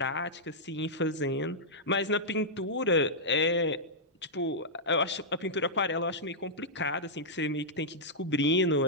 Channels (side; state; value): both; normal; correlation -0.09